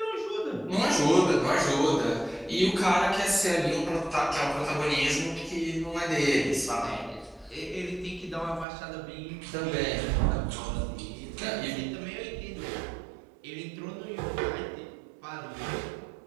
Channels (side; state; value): left; drops out; at 8.7 s